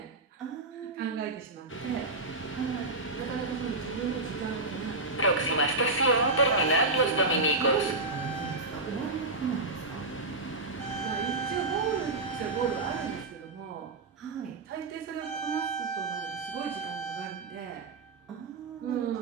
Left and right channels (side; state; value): left; quieter; 3.2 dB